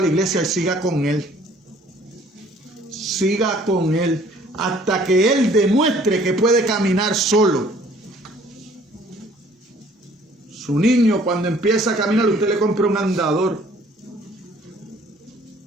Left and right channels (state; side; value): normal; both; correlation 0.57